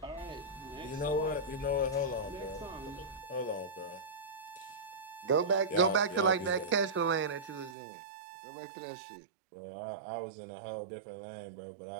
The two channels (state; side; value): drops out; left; at 7.8 s